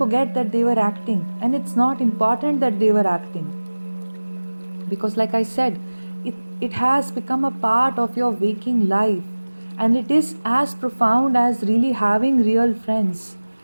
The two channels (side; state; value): both; inverted; correlation -1.00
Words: that they were acting, and it's not important that they were acting. Because like I said, it has become a part of your waking life, and it is as profound as really having real friends.